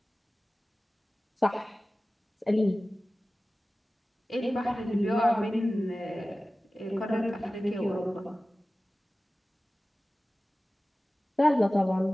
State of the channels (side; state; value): both; normal; correlation 0.96